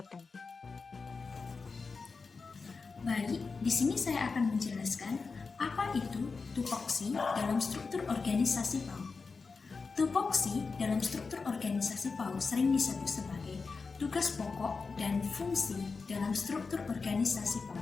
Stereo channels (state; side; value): quieter; right; 4.6 dB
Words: Baik, di sini saya akan menjelaskan apa itu tupoksi dalam struktur organisasi PAUD. Tupoksi dalam struktur organisasi PAUD sering disebut sebagai tugas pokok dan fungsi dalam struktur organisasi